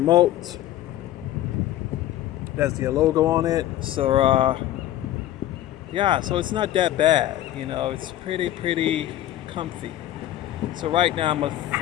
That's the logo on it. So, so it's not that bad. It's pretty comfy. So right now I'm with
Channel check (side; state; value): right; quieter; 13.3 dB